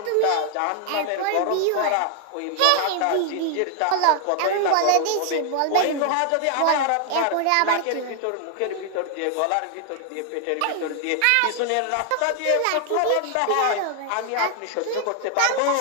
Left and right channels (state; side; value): different; both; correlation 0.00